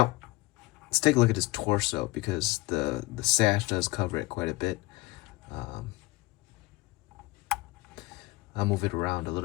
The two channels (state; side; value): quieter; right; 21.3 dB